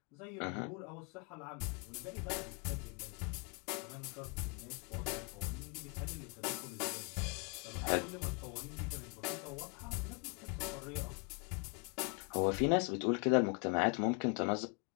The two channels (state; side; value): quieter; right; 33.5 dB